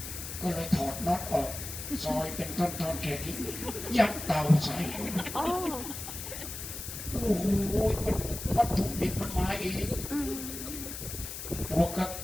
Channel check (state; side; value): noise; left; hiss, 8 dB below the sound